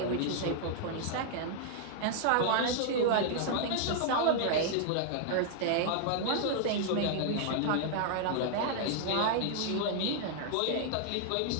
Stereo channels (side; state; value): both; different; correlation 0.00